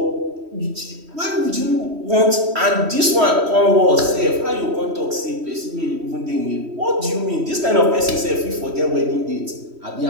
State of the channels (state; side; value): late; left; 3.1 ms